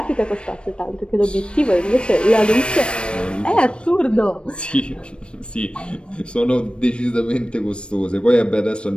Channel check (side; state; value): right; late; 0.057 ms